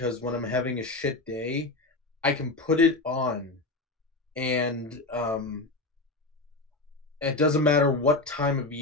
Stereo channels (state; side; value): quieter; right; 3.1 dB